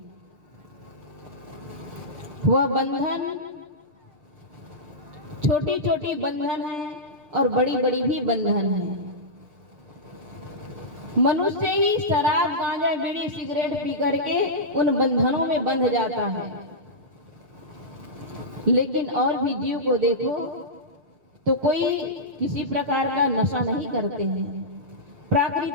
वह बंधन छोटी छोटी बंधन है और बड़ी बड़ी भी बंधन है। मनुष्य ही शराब, गांजा, बीड़ी, सिगरेट पी करके उन बंधनों में बंध जाता है। लेकिन और भी जीव को देखो तो कोई किसी प्रकार का नशा नहीं करते हैं।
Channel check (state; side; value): late; left; 6.7 ms